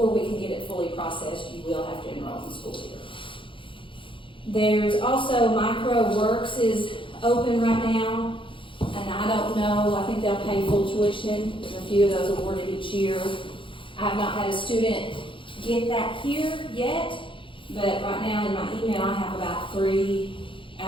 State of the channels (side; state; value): right; late; 0.25 ms